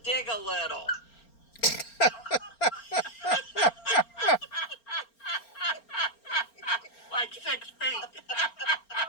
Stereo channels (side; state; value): right; late; 4.4 ms